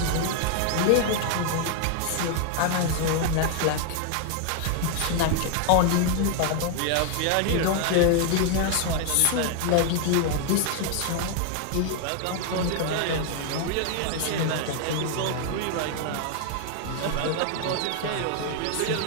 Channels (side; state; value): both; different; correlation 0.00